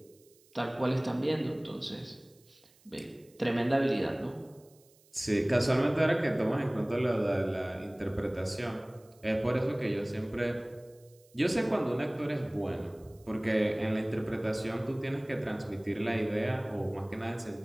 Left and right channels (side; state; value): right; noise; hiss, 30 dB below the sound